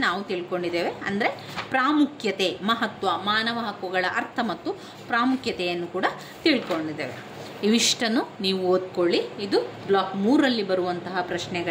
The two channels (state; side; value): identical; both; correlation 1.00